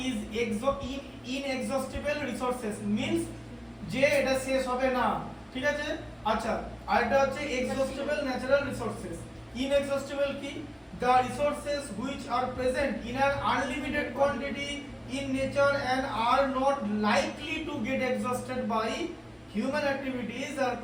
is inexhaustible resources, means যে এটা শেষ হবে না, ঠিক আছে? আচ্ছা, আরেকটা হচ্ছে এক্সহস্টিবল ন্যাচারাল রিসোর্সেস। ইনএক্সহস্টিবল কি? the resources which are present in an unlimited quantity in nature and are not likely to get exhausted by human activities are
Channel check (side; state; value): both; identical; correlation 1.00